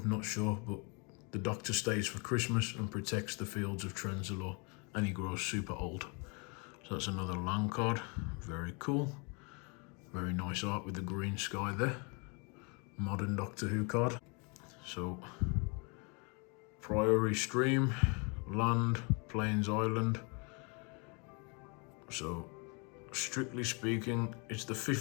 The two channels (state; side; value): quieter; right; 32.9 dB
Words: not sure, but the Doctor stays for Christmas and protects the fields of Trenzalore, and he grows super old. So that's another land card. Very cool. Very nice art with the green sky there. Modern Doctor Who card. So, Priory Stream, land, Plains Island. So, strictly speaking, it's the